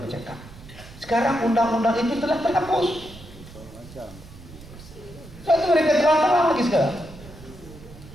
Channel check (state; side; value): noise; right; rumble, 18 dB below the sound